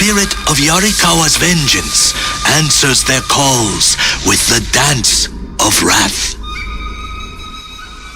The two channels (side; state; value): both; identical; correlation 1.00